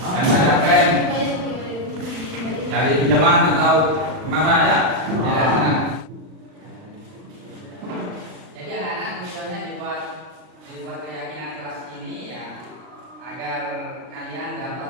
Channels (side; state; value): left; late; 39 ms